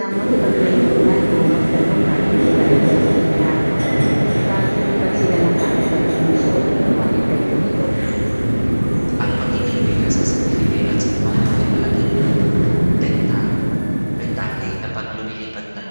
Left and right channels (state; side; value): inverted; both; correlation -1.00